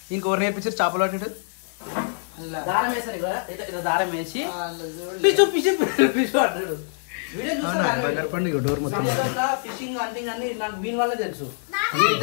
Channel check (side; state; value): right; silent; digital silence